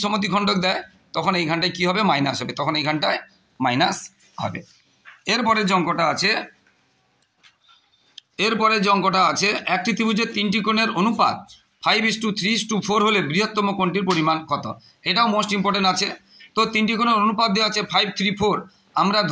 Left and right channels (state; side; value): identical; both; correlation 1.00